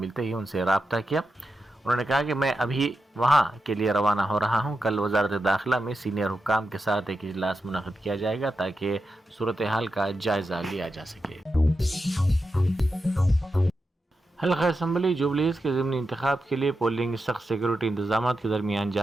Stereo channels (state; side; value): normal; both; correlation 0.89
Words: ہی ان سے رابطہ کیا۔ انہوں نے کہا کہ میں ابھی وہاں کے لیے روانہ ہو رہا ہوں۔ کل وزارت داخلہ میں سینئر حکام کے ساتھ ایک اجلاس منعقد کیا جائے گا تاکہ صورتحال کا جائزہ لیا جا سکے۔ حلقہ اسمبلی جوبلی ہلز کے ضمنی انتخاب کے لیے پولنگ سخت سیکورٹی انتظامات کے درمیان